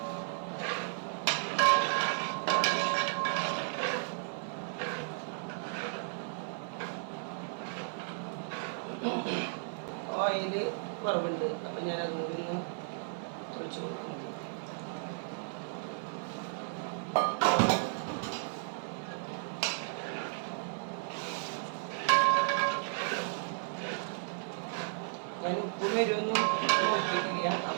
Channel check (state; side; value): silent; left; digital silence